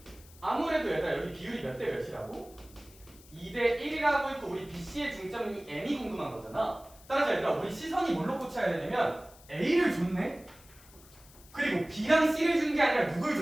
아무래도 얘들아 여기 비율이 몇 대 몇이라고? 2대 1이라고 있고 우리 BC의 중점이 M이 궁금한 거잖아. 따라서 얘들아 우리 시선이 뭘로 꽂혀야 되냐면 A를 줬네? 그리고 B랑 C를 준 게 아니라 누굴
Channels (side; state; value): left; noise; hiss, 23 dB below the sound